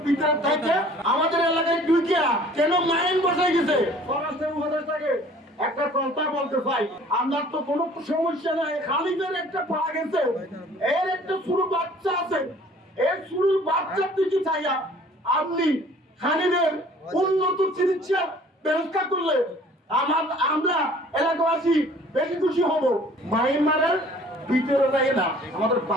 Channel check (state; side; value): normal; both; correlation 0.52